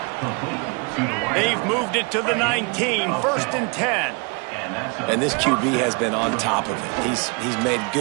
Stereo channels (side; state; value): left; quieter; 32.6 dB